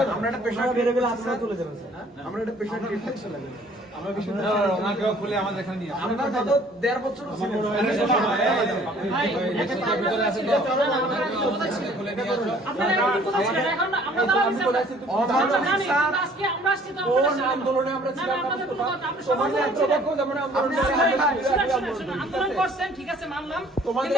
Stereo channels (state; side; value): normal; both; correlation 0.56